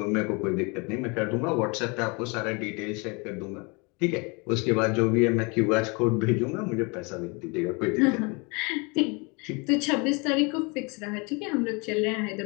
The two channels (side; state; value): right; quieter; 30.2 dB